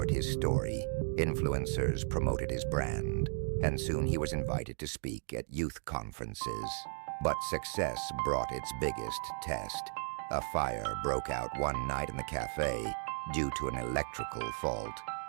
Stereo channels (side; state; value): left; silent; 54 dB below the other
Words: his story, influencers promoted his brand, and soon he was invited to speak at youth conferences. But success brought its biggest test. A fire broke out one night in the cafe due to an electrical fault.